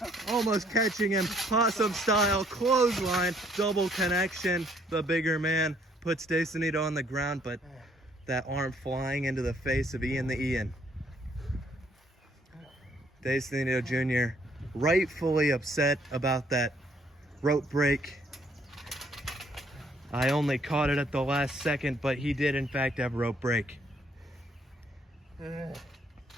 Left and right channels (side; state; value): both; normal; correlation 0.66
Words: Almost catching him. Possum style clothesline. Double connection. The bigger man puts Sonido on the ground, but that arm flying into the face of Ian the Ian. Sonido Jr. rightfully upset about that rope break. I only caught it at the last second, but he did in fact have rope break.